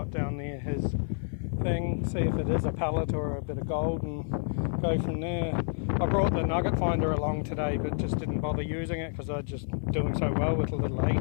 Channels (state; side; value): silent; right; 57 dB below the other